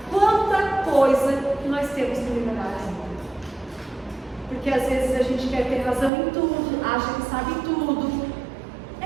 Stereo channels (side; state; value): left; drops out; at 6.1 s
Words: quanta coisa que nós temos que liberar. Porque às vezes a gente quer ter razão em tudo, acha que sabe tudo.